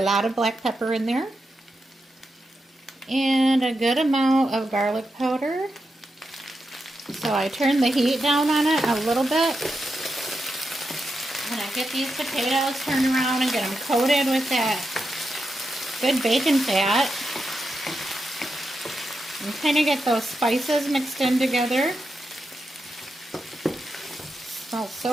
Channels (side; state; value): both; normal; correlation 0.87